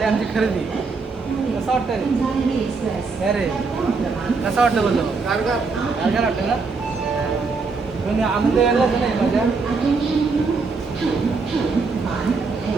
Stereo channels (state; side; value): quieter; left; 4.4 dB